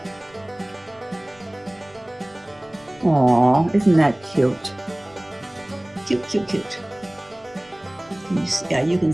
Aw, isn't that cute? Cute, cute, cute. You can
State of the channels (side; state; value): left; noise; rumble, 29 dB below the sound